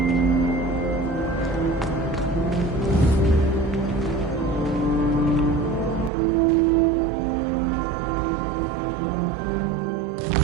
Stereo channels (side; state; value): left; drops out; at 6.1 s